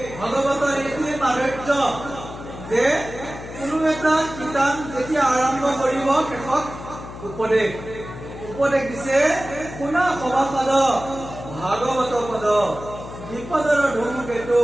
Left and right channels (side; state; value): left; noise; hum, 12 dB below the sound